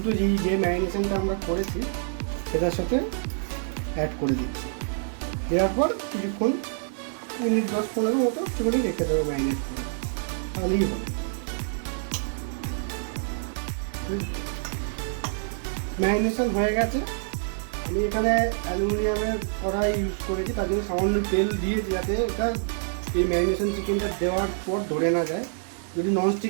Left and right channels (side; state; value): left; silent; digital silence